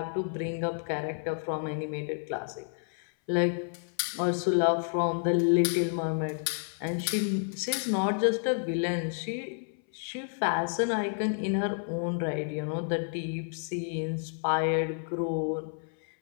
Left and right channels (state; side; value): silent; right; 58 dB below the other